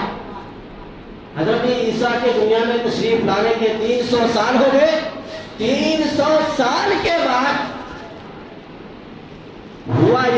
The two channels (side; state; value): both; identical; correlation 1.00